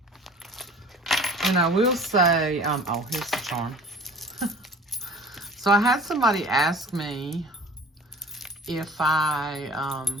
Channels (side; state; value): both; normal; correlation 0.45